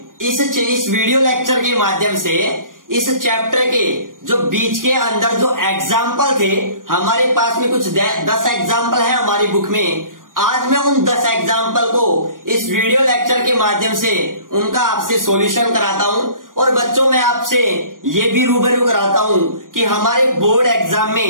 इस वीडियो लेक्चर के माध्यम से इस चैप्टर के जो बीच के अंदर जो एग्जाम्पल थे, हमारे पास में कुछ 10 एग्जाम्पल है हमारी बुक में। आज मैं उन 10 एग्जाम्पल को इस वीडियो लेक्चर के माध्यम से उनका आपसे सॉल्यूशन कराता हूं। और बच्चों, मैं आपसे ये भी रूबरू कराता हूं कि हमारे बोर्ड एग्जाम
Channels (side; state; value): left; late; 0.90 ms